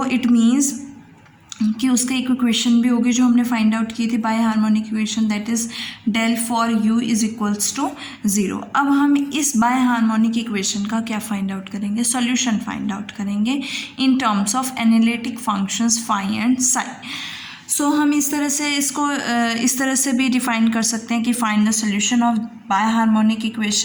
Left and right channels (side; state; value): both; identical; correlation 1.00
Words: इट मीन्स कि उसका एक इक्वेशन भी होगी जो हमने फाइंड आउट की थी biharmonic equation, that is del four u is equals to 0। अब हम इस बाय हार्मोनिक इक्वेशन का क्या फाइंड आउट करेंगे, सॉल्यूशन फाइंड आउट करेंगे in terms of analytic functions phi and psi. So हम इस तरह से इसको इस तरह से भी डिफाइन कर सकते हैं कि find the solution of biharmonic